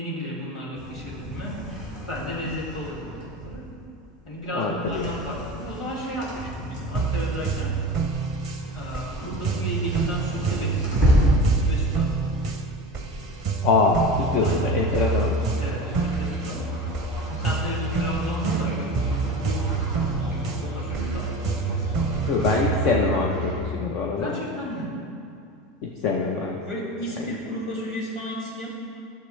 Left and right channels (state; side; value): normal; both; correlation 0.30